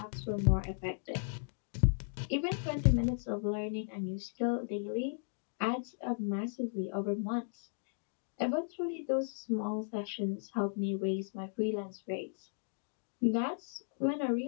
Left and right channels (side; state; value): right; silent; digital silence